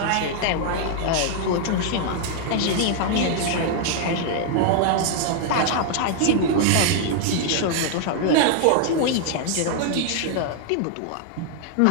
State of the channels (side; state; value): both; different; correlation 0.00